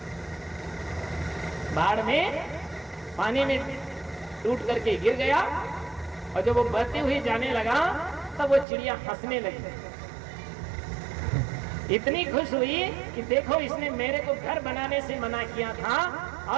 बाढ़ में पानी में टूट करके गिर गया, और जब वो बहते हुए जाने लगा तब वो चिड़िया हंसने लगी, इतनी खुश हुई कि देखो इसने मेरे को घर बनाने से मना किया था,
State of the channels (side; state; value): left; drops out; at 8.7 s